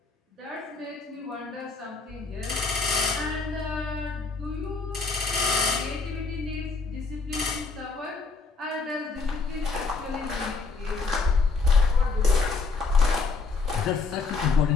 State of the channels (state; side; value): quieter; right; 4.3 dB